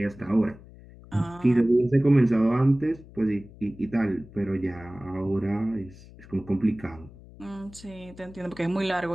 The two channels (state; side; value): noise; left; hum, 20 dB below the sound